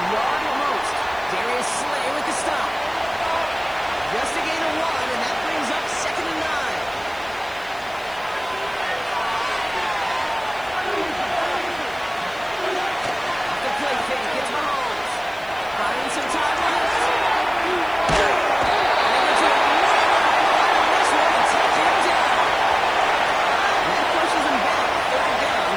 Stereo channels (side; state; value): right; noise; hiss, 26 dB below the sound